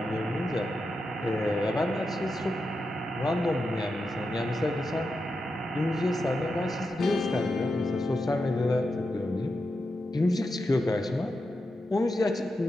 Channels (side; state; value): both; normal; correlation 0.88